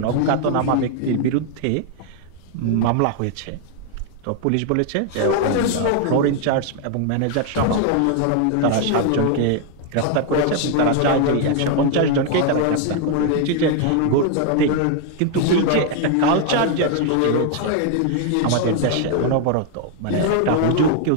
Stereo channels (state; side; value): different; both; correlation 0.00